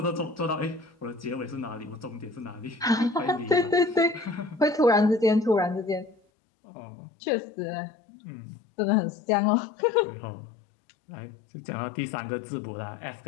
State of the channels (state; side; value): drops out; right; at 6.2 s